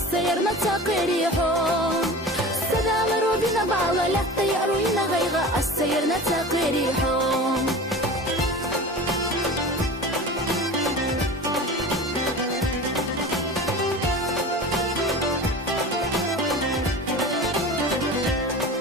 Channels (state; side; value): normal; both; correlation 0.35